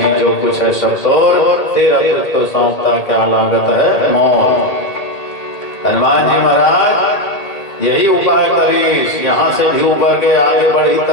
जो कुछ है सब तोर, तेरा तुझको सौंपता क्या लागत है मौत। हनुमान जी महाराज यही उपाय करी, यहाँ से भी उबर के आगे बढ़ी तो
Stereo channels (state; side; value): late; right; 1.8 ms